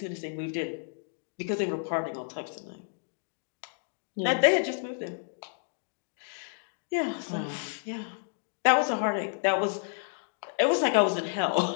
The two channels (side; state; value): right; silent; digital silence